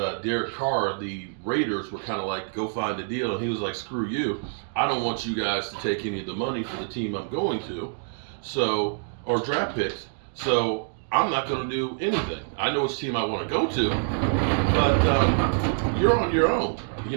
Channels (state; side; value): silent; left; 61 dB below the other